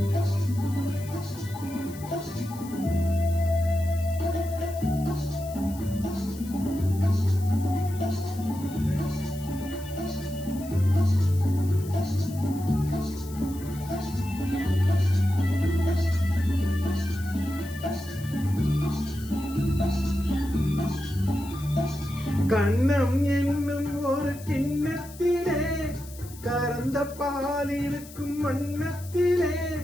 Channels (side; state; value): left; noise; hiss, 18 dB below the sound